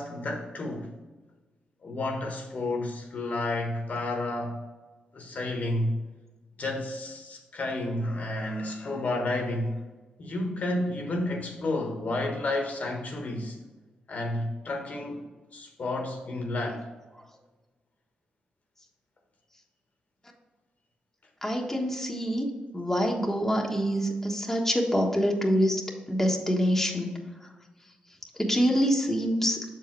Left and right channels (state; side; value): normal; both; correlation 0.83